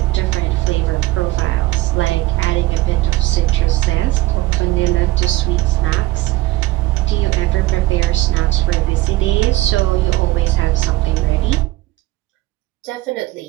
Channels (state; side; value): quieter; left; 18.8 dB